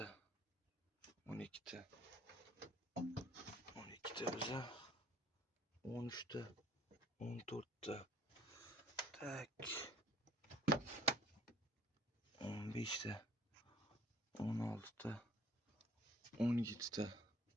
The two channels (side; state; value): both; normal; correlation 0.55